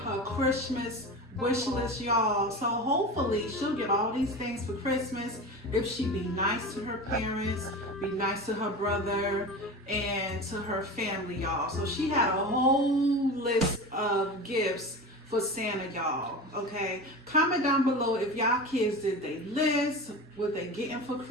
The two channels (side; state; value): both; normal; correlation 0.29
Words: her Christmas wish list, y'all. So hopefully she'll get all these things for Christmas if she be nice to her parents, be nice to her brother, and to her family, y'all. So she had a whole list of gifts for Santa, y'all. Okay, comment down below if y'all kids did they list, what they getting for